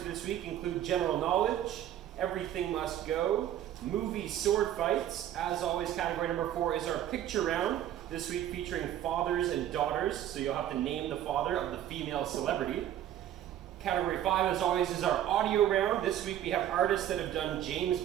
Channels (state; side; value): quieter; left; 11.5 dB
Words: this week include general knowledge, everything must go, movie sword fights. As always, category number 4 is our picture round, this week featuring fathers and daughters, so you'll have to name the father of the female celebrity. Category 5, as always, is our audio round. This week we have artists that have done James